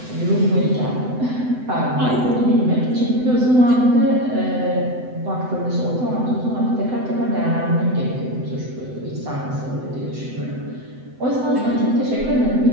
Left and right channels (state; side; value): late; left; 7.9 ms